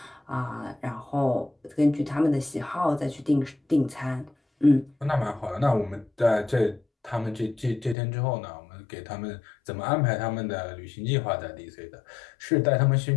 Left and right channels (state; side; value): drops out; right; at 8.0 s